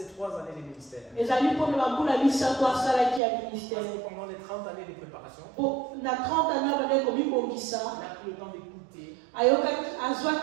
3 années de ministère. ezali mpona bambula misato asalaki ya Parce ministère. que pendant les 30 années de préparation, Po na 30 ans abandaki komibongisa il a pris le temps d'écouter, ayokaki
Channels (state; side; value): drops out; left; at 3.2 s